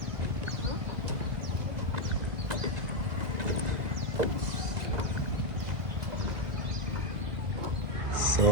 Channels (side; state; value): left; late; 1.9 ms